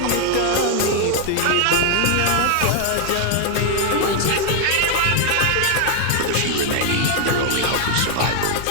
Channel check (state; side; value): different; both; correlation 0.00